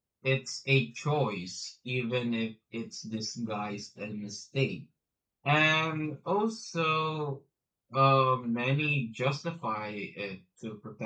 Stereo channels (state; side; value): identical; both; correlation 1.00